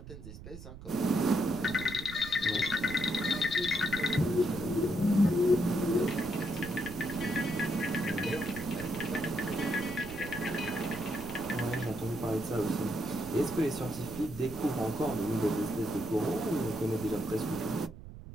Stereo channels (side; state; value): right; noise; rumble, 14 dB below the sound